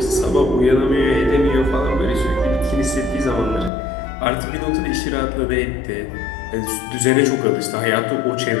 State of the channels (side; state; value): right; drops out; at 3.7 s